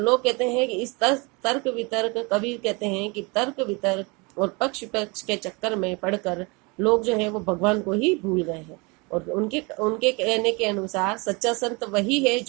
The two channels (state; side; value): quieter; left; 28.2 dB